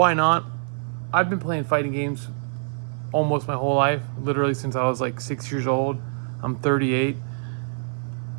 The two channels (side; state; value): left; silent; 57 dB below the other